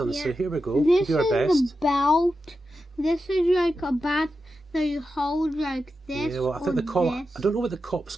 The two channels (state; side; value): normal; both; correlation 0.90